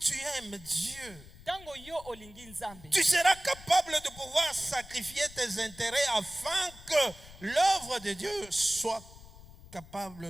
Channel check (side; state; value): left; noise; rumble, 19 dB below the sound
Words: aimes Dieu, Tango yo olingi nzambe, tu seras capable de pouvoir sacrifier tes intérêts afin que l'œuvre de Dieu soit